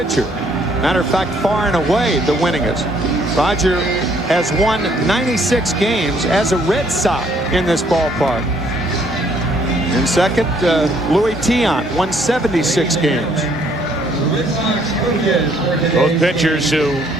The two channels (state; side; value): normal; both; correlation 0.65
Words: Matter of fact, far and away the winningest. Roger has won 96 games as a Red Sox in this ballpark. In second, Louis Tiant won 76 games. Both pitchers who